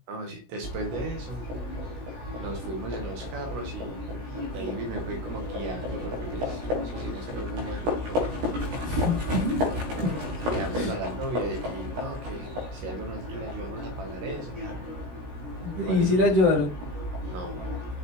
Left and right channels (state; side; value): late; left; 17 ms